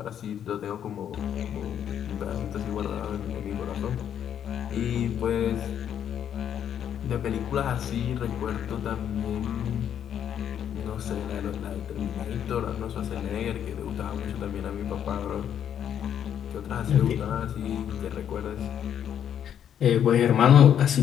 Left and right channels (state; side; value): quieter; right; 9.3 dB